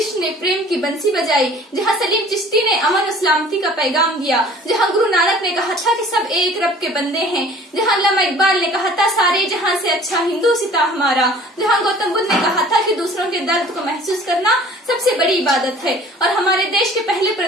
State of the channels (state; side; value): normal; both; correlation 0.49